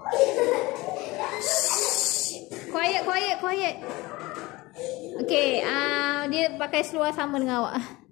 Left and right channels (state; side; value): quieter; right; 21.3 dB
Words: Quiet. Okay, dia pakai seluar sama dengan awak.